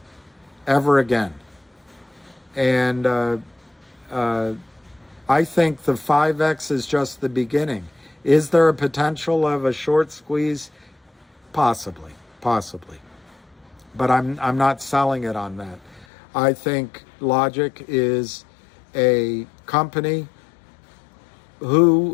ever again. And I think the 5X is just the beginning. Is there a potential of a short squeeze? Possibly. But I'm not selling it on that. I think Logic is a company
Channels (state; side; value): drops out; right; at 16.1 s